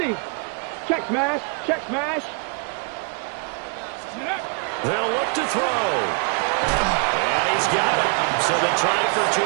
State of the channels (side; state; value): left; quieter; 39.4 dB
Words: Check smash. Check smash. They'll look to throw. And he's got it. So the try for